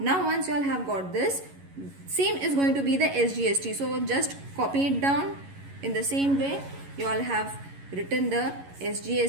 once you all have got this, same is going to be the SGST. So just copy it down in the same way. You all have written the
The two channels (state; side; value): late; left; 11 ms